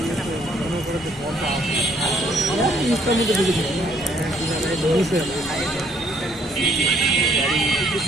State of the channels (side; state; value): both; normal; correlation 0.65